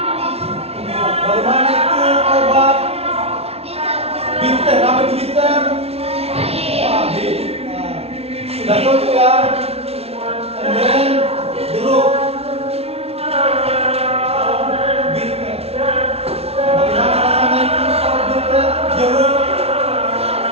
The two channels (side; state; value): left; late; 0.30 ms